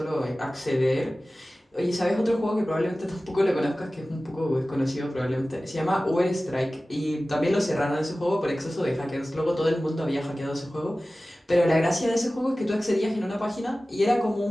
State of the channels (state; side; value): normal; both; correlation 0.96